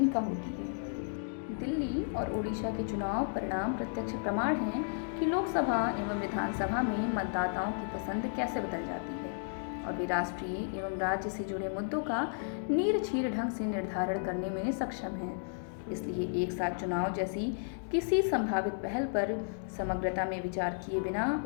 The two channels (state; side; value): silent; right; digital silence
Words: होती है। दिल्ली और ओडिशा के चुनाव परिणाम प्रत्यक्ष प्रमाण हैं कि लोकसभा एवं विधानसभा में मतदाताओं की पसंद कैसे बदल जाती है और वे राष्ट्रीय एवं राज्य से जुड़े मुद्दों का नीरछीर ढंग से निर्धारण करने में सक्षम हैं। इसलिए एक साथ चुनाव जैसी किसी संभावित पहल पर समग्रता में विचार किए बिना